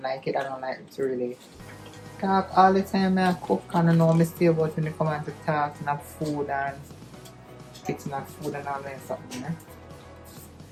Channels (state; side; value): identical; both; correlation 1.00